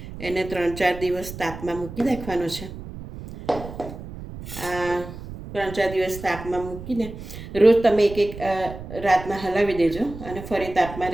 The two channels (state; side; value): noise; right; rumble, 12 dB below the sound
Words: એને 3-4 દિવસ તાપમાં મૂકી રાખવાનો છે. આ 3-4 દિવસ તાપમાં મૂકીને રોજ તમે એક રાતના હલાવી દેજો અને ફરી તાપમાં